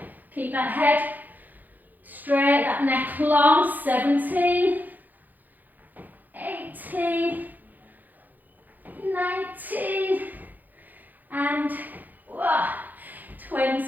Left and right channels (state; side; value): late; left; 0.084 ms